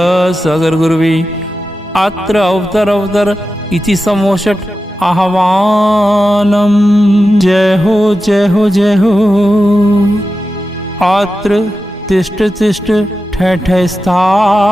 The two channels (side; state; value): both; normal; correlation 0.92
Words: गुरुवी अत्र अवतर इति समोषट आह्वानम। जय हो जय हो जय हो। अत्र तिष्ठ तिष्ठ ठय ठय